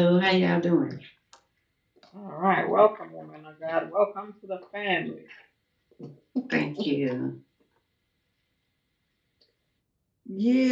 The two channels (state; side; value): identical; both; correlation 1.00